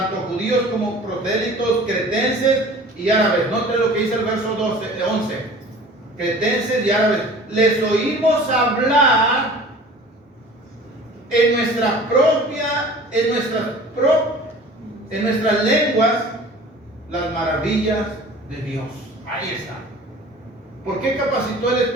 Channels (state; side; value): normal; both; correlation 0.44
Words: judíos como prosélitos, cretenses y árabes. Noten lo que dice el verso 11. Cretenses y árabes, les oímos hablar en nuestras lenguas las maravillas de Dios. Ahí está. ¿Por qué capacitó el